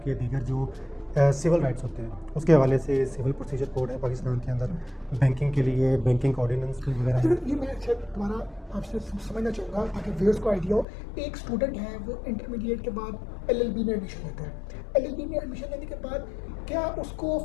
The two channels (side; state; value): right; drops out; at 10.9 s